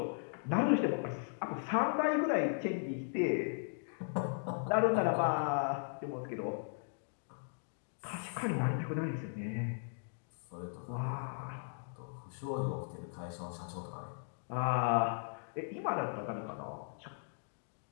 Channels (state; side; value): silent; right; digital silence